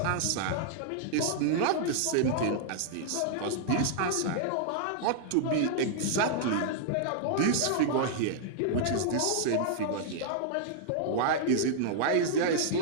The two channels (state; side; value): different; both; correlation -0.01